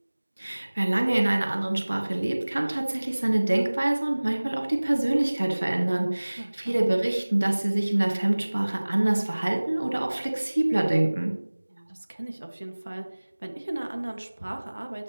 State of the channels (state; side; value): inverted; both; correlation -1.00